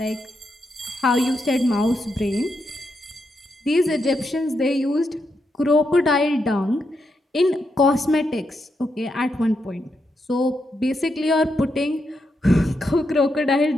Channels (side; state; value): both; normal; correlation 0.83